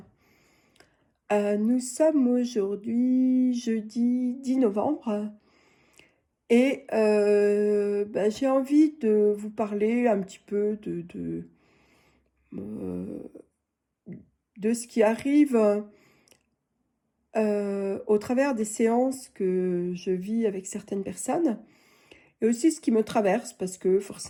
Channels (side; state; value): both; identical; correlation 1.00